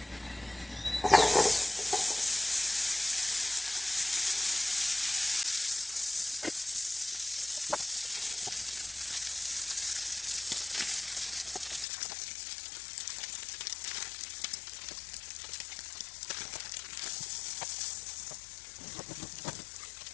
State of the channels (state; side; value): drops out; right; at 11.9 s